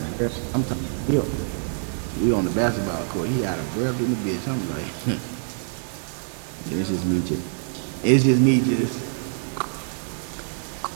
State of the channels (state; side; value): silent; left; digital silence